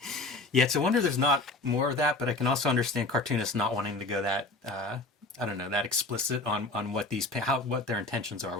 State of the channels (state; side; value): quieter; right; 3.1 dB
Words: Yeah, it's a wonder there's not more of that, but I can also understand cartoonists not wanting to go that that explicit on what what their intentions are